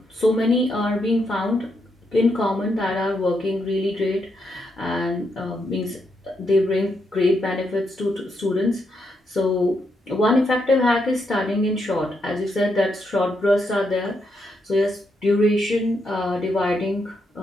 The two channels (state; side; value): normal; both; correlation 0.80